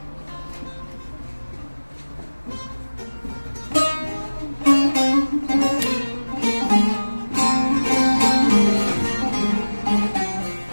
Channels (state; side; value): inverted; both; correlation -1.00